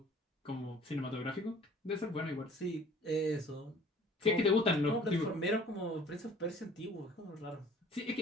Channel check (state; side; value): normal; both; correlation 0.51